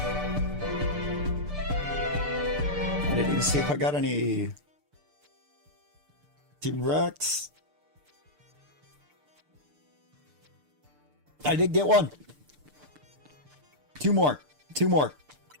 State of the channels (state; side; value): late; left; 6.7 ms